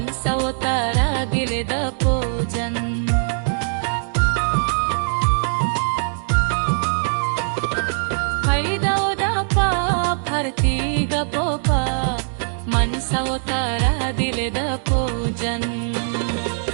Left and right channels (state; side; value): silent; left; digital silence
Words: ಗಿಳಿದ ಪೂಜನ್ ಹೈದೌದ ಪಾರ್ಥೀಗ ಪೋಪ ಮನ್ಸವತಾರ ದಿಲಿದ ಪೂಜನ್